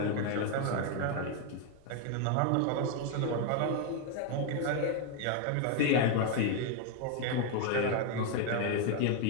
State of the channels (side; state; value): both; different; correlation 0.01